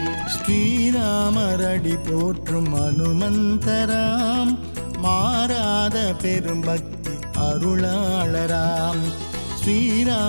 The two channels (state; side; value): inverted; both; correlation -1.00